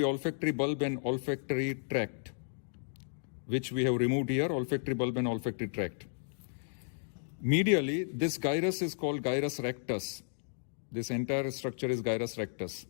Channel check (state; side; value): silent; right; digital silence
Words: olfactory bulb and olfactory tract, which we have removed here, olfactory bulb and olfactory tract. Medially, this gyrus is called gyrus rectus. This entire structure is gyrus rectus.